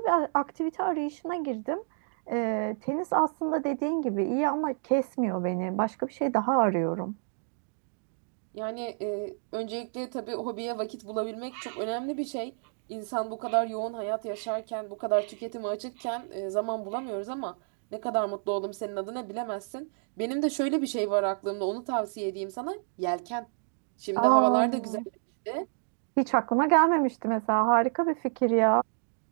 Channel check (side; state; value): left; silent; digital silence